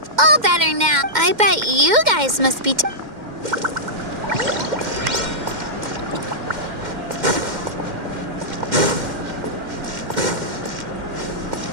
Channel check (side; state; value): left; late; 2.1 ms